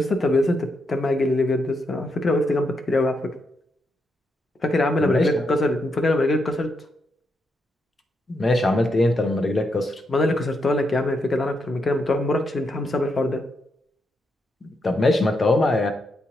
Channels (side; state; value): both; normal; correlation 0.81